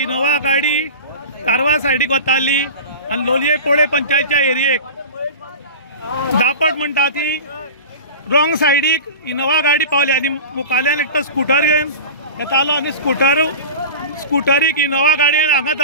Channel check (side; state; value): both; inverted; correlation -0.31